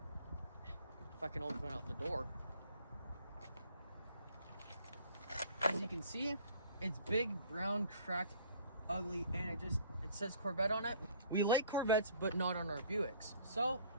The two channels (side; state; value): both; inverted; correlation -0.53